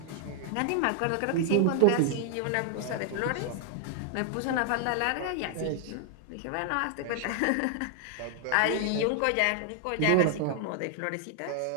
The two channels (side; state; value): both; different; correlation 0.00